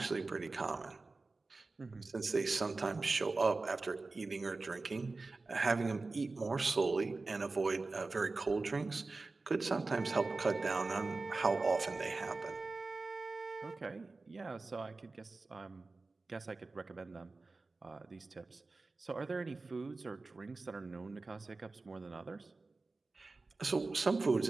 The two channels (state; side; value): quieter; left; 3.6 dB